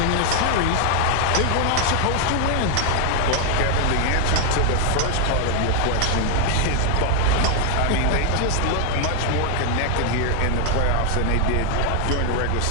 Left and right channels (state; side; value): different; both; correlation 0.00